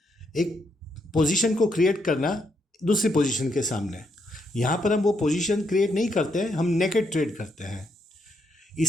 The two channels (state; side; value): normal; both; correlation 0.77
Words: एक पोजीशन को क्रिएट करना दूसरी पोजीशन के सामने। यहाँ पर हम वो पोजीशन क्रिएट नहीं करते हैं, हम नेकेड ट्रेड करते हैं।